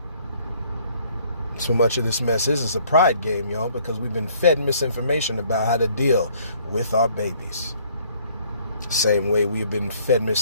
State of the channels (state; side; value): inverted; both; correlation -0.61